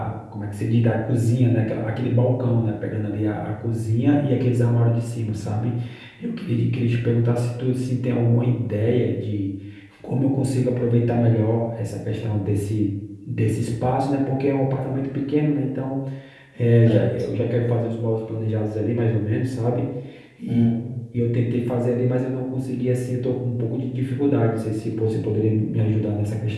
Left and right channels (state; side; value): identical; both; correlation 1.00